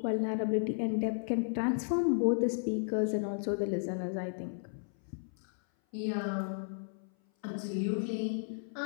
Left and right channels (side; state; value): right; silent; 55 dB below the other